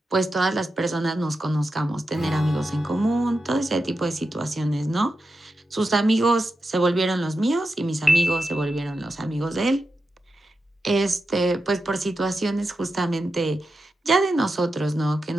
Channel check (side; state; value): both; normal; correlation 0.89